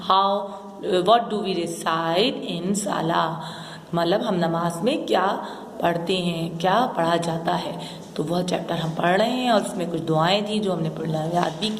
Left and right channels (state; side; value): identical; both; correlation 1.00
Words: व्हाट डू वी रिसाइट इन साला, मतलब हम नमाज में क्या पढ़ते हैं, क्या पढ़ा जाता है। तो वह चैप्टर हम पढ़ रहे हैं और उसमें कुछ दुआएं थी जो हमने पढ़ना याद भी